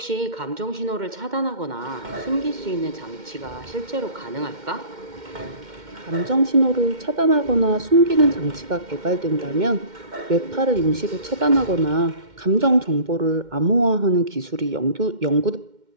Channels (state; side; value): late; left; 2.1 ms